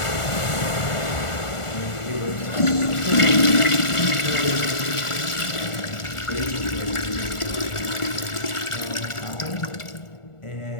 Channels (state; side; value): late; right; 1.4 ms